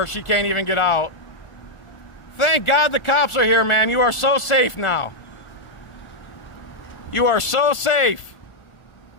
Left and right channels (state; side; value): late; right; 1.4 ms